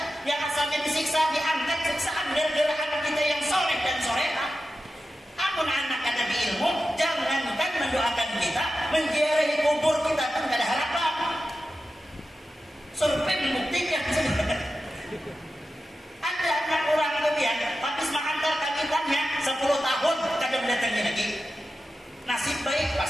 yang asalnya disiksa diangkat siksaan gara-gara anak kita yang soleh dan solehah. Amun anak ada di ilmu, jangankan mendoakan kita, menziarahi kubur kita pun gak ada harapan. Survei membuktikan. Ada anak orang kemudian, habis mengantar kakitannya 10 tahun kadang mendatangi lagi. Nasib baik pas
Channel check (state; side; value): normal; both; correlation 0.92